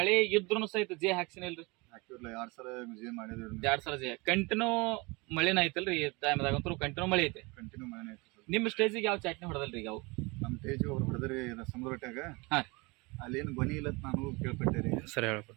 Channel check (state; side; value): quieter; left; 26.2 dB